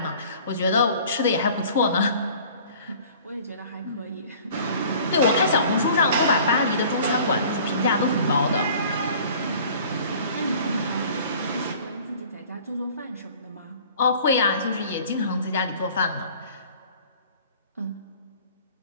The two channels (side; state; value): both; inverted; correlation -0.49